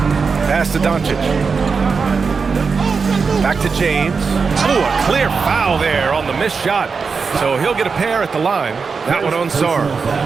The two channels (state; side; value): quieter; left; 5.1 dB